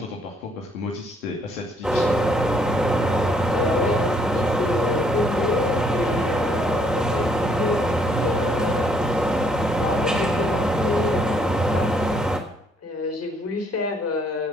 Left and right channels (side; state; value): both; normal; correlation 0.68